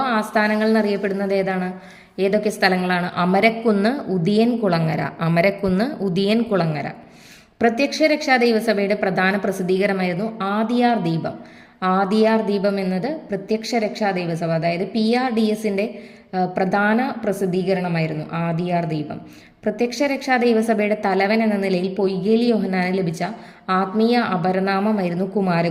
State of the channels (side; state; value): both; identical; correlation 1.00